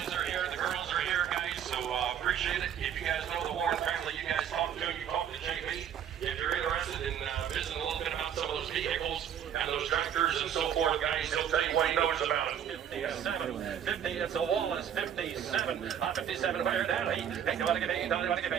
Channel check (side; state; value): left; quieter; 9.1 dB